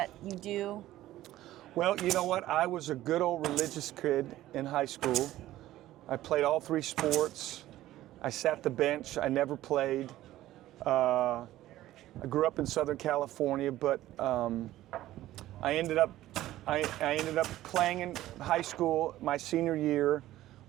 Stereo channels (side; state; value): left; quieter; 14.8 dB